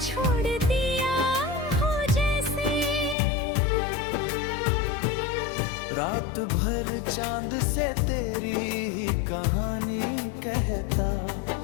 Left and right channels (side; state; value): right; drops out; at 3.2 s